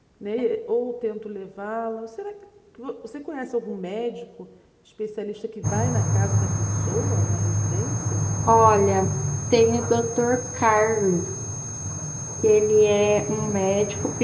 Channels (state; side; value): identical; both; correlation 1.00